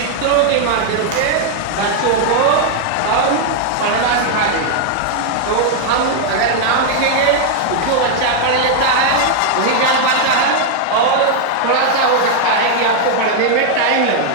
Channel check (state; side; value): different; both; correlation 0.00